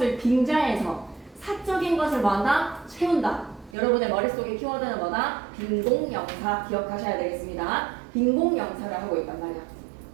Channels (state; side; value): drops out; left; at 3.8 s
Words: 빙자해서 사적인 것을 뭐한다? 채운다. 여러분의 머릿속의 키워드는 뭐다? 빈공명사 기억하셔야 되겠습니다. 빈공명사를 하고 있단 말이야.